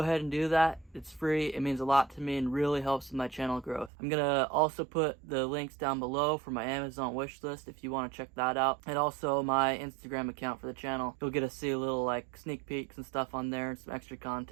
and do that. It's free. It means a lot to me and really helps with my channel growth. I'm going to also put the links down below for my Amazon wish list if you want to check that out. And also my Instagram account for the channel. You'll get to see a little like sneak peeks and stuff on there and some extra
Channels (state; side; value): drops out; left; at 3.9 s